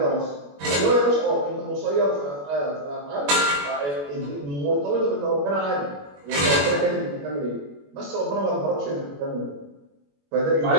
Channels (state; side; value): late; left; 21 ms